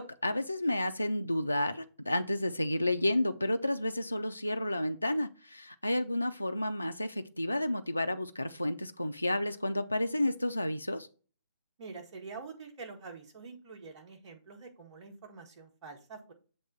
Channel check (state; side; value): inverted; both; correlation -0.93